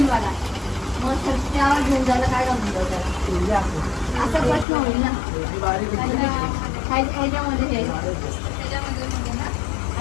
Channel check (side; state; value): right; drops out; at 4.7 s